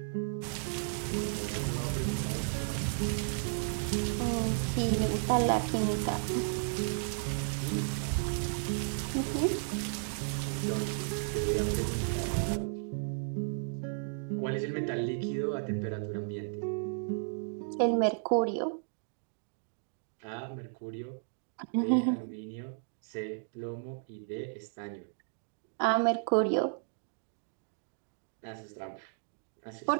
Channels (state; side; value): silent; left; digital silence